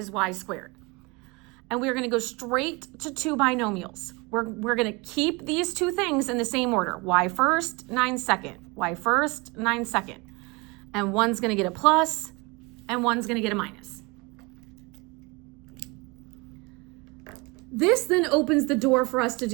y squared. And we're going to go straight to two binomials. We're going to keep these two things in the same order. Y first, 9 second. Y first, 9 second. And one's going to get a plus, and one's going to get a minus. This then opens the door for us to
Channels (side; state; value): left; quieter; 26.8 dB